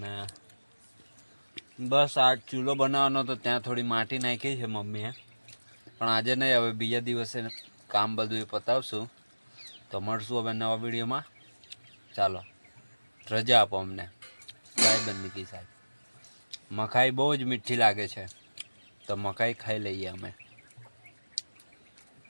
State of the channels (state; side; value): inverted; both; correlation -1.00